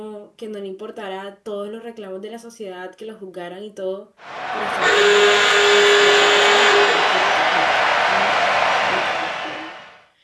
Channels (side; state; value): both; identical; correlation 1.00